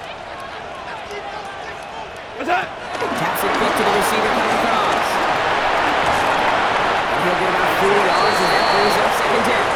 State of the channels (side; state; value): both; identical; correlation 1.00